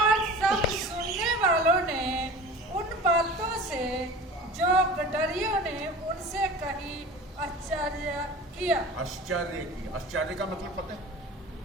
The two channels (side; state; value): both; normal; correlation 0.38